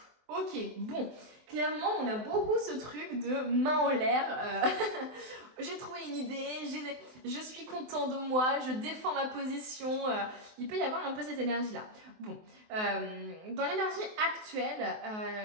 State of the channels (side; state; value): left; late; 23 ms